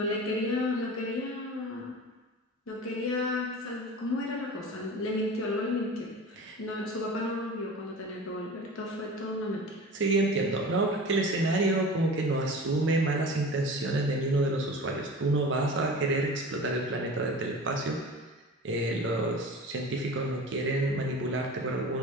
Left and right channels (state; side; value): normal; both; correlation 0.36